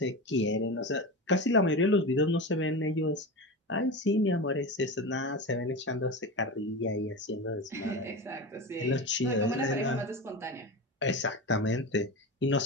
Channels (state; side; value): normal; both; correlation 0.24